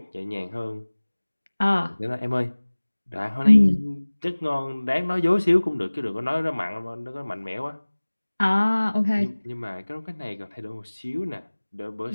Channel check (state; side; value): inverted; both; correlation -1.00